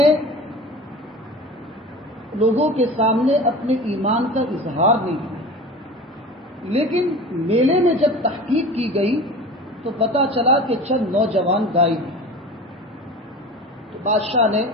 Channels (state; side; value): normal; both; correlation 0.36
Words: لوگوں کے سامنے اپنے ایمان کا اظہار نہیں کیا، لیکن میلے میں جب تحقیق کی گئی تو پتہ چلا کہ چند نوجوان غائب ہیں۔ تو بادشاہ نے